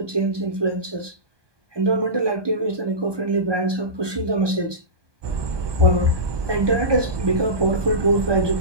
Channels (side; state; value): left; late; 1.2 ms